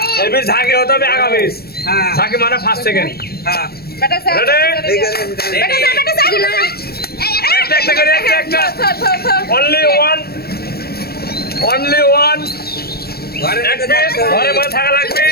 এবার ঝাঁকি হতে হবে আগামী ঝাঁকি মানে ফার্স্ট সেকেন্ড Only one. ঘরে মধ্যে থাকা লাগবে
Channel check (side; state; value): right; late; 0.45 ms